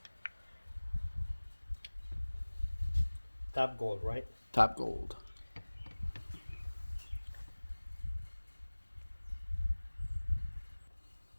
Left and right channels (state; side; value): inverted; both; correlation -1.00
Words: Top gold, right? Top gold.